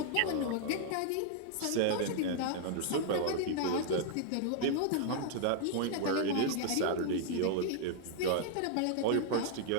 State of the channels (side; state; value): both; different; correlation -0.01